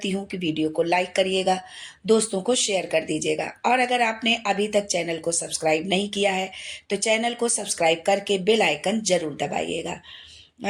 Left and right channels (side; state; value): both; identical; correlation 1.00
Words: हूँ कि वीडियो को लाइक करिएगा, दोस्तों को शेयर कर दीजिएगा, और अगर आपने अभी तक चैनल को सब्सक्राइब नहीं किया है तो चैनल को सब्सक्राइब करके बेल आइकन जरूर दबाइएगा।